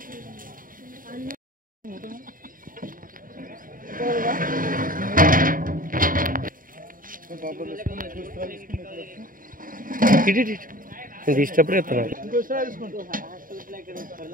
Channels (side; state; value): left; late; 0.40 ms